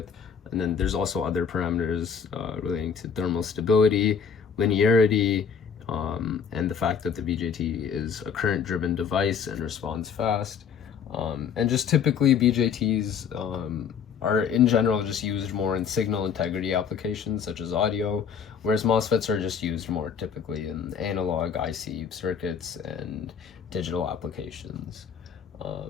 And then there's also other parameters relating to thermal stability, linearity, and the fact that the BJT is a current-driven device and responds fast. And just typically BJTs are in general just used more in signal integrity applications such as audio, whereas MOSFETs are just used more typically in analog IC circuits and digital applications.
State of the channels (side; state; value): right; quieter; 6.9 dB